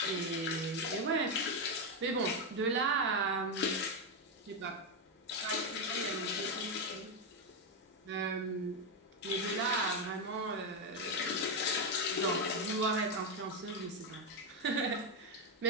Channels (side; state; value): both; normal; correlation 0.06